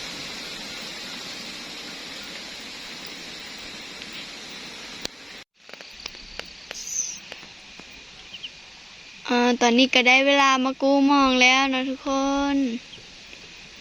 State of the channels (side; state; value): both; identical; correlation 1.00